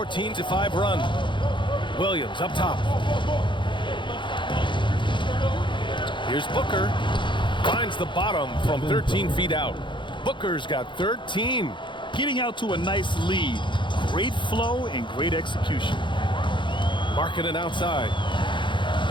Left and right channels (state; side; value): late; right; 0.23 ms